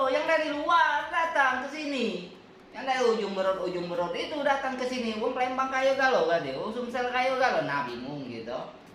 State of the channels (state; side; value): identical; both; correlation 1.00